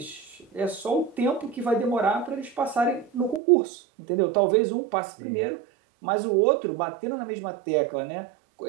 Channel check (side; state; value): left; drops out; at 3.4 s